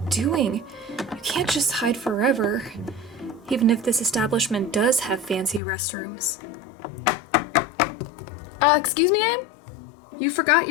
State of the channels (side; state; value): right; drops out; at 5.6 s